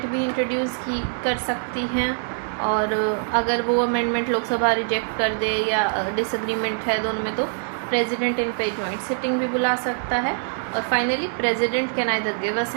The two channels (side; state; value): left; silent; digital silence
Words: भी इंट्रोड्यूस कर सकती हैं। और अगर वो अमेंडमेंट लोकसभा रिजेक्ट कर दे या डिसएग्रीमेंट है दोनों में, तो प्रेसिडेंट इन पे जॉइंट सिटिंग भी बुला सकता है। और finally president can either give